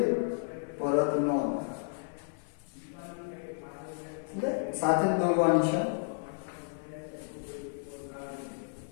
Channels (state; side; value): silent; right; 56 dB below the other